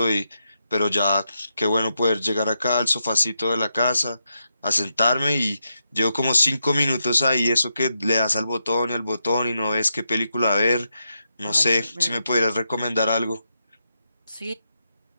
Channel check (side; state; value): both; inverted; correlation -0.84